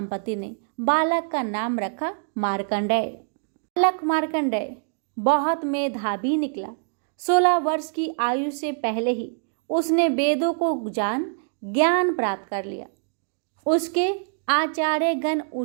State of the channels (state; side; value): silent; left; 62 dB below the other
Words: ने बालक का नाम रखा मार्कंडेय। बालक मार्कंडेय बहुत मेधावी निकला। 16 वर्ष की आयु से पहले ही उसने वेदों को जान ज्ञान प्राप्त कर लिया। उसके आचार्यगण